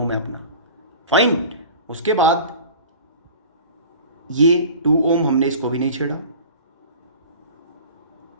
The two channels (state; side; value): inverted; both; correlation -0.40